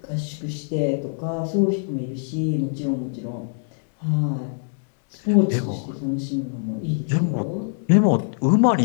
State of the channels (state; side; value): silent; right; digital silence